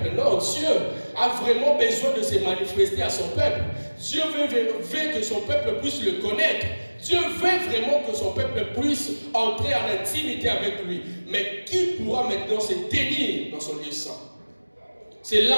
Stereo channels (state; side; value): inverted; both; correlation -1.00